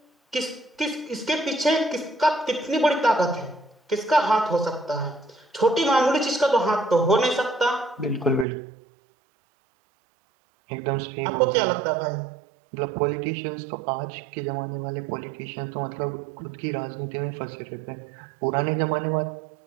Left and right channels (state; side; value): drops out; left; at 8.5 s